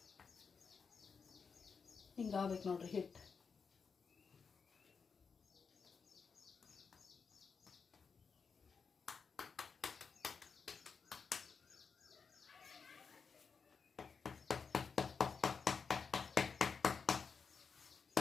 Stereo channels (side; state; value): right; quieter; 5.6 dB